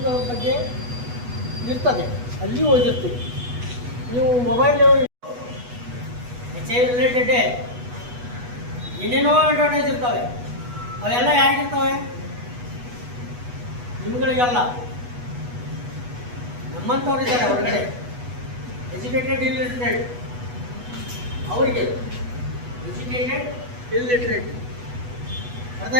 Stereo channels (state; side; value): late; left; 8.2 ms